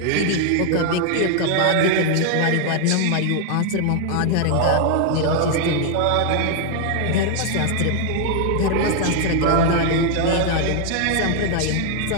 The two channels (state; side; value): different; both; correlation 0.00